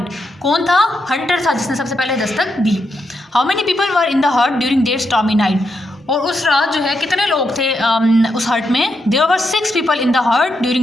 कौन था? हंटर था जिसने सबसे पहले दस्तक दी. How many people were in the hut during that stormy night? और उस रात जो है कितने लोग थे उस हट में? There were 6 people in the hut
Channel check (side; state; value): both; normal; correlation 0.82